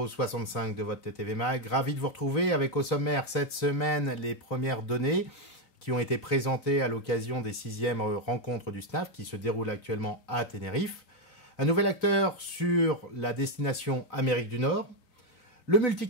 65 de votre TTV Mag. Ravi de vous retrouver avec au sommaire cette semaine les premières données qui ont été présentées à l'occasion des 6e rencontres du SNAF qui se déroulent actuellement à Tenerife. Un nouvel acteur sur la destination Amérique du Nord. Le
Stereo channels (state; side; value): late; right; 3.9 ms